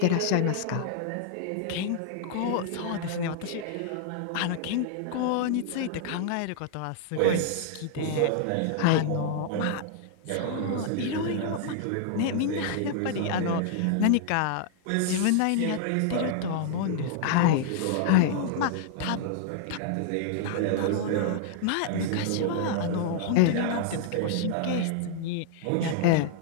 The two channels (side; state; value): both; different; correlation -0.01